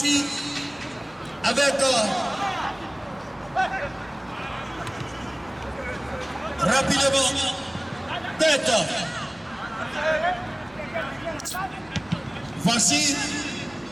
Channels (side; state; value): left; noise; rumble, 27 dB below the sound